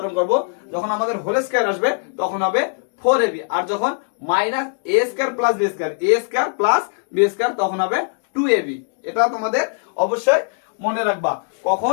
করব, যখন আমাদের হোল স্কয়ার আসবে তখন হবে 4ab। আর যখন minus a square plus B square, a square plus B square, তখন হবে 2ab। এটা তোমাদের অবশ্যই মনে রাখবা,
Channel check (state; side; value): silent; right; digital silence